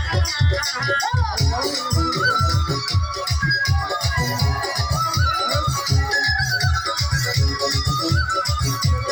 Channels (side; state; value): both; identical; correlation 1.00